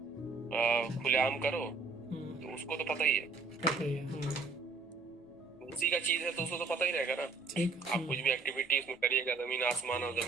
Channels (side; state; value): left; quieter; 4.2 dB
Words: खुलेआम करो, तो उसको तो पता ही है, उसी का चीज है तो उसको तो पता ही रहेगा ना। आप कुछ भी एक्टिविटी उसमें करिएगा, जमीन आसमान और